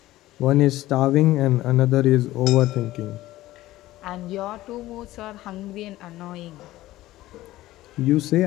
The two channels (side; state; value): right; quieter; 16.3 dB